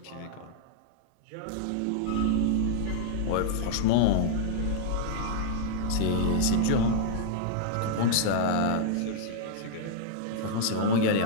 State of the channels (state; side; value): different; both; correlation -0.01